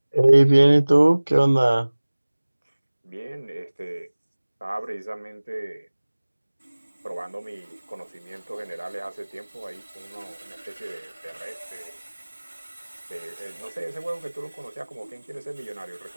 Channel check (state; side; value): inverted; both; correlation -1.00